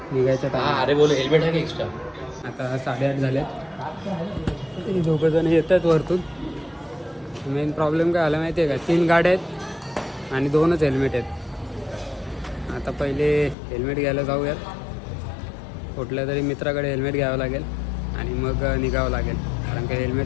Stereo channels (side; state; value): right; drops out; at 13.6 s